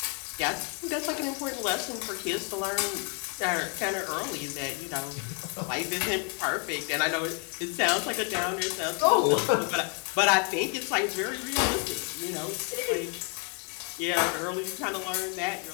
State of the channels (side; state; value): right; quieter; 37.1 dB